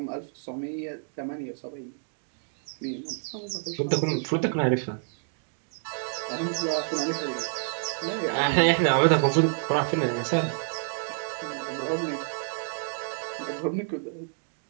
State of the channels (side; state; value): left; silent; digital silence